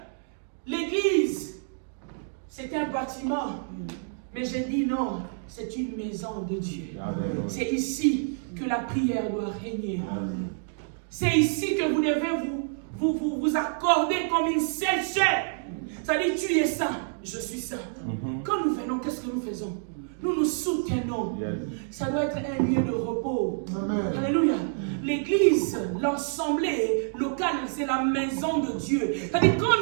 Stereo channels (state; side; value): silent; left; digital silence